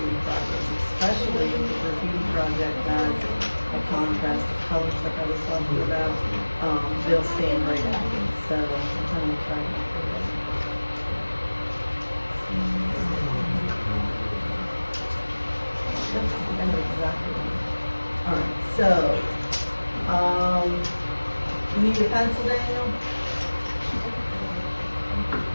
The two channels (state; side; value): inverted; both; correlation -1.00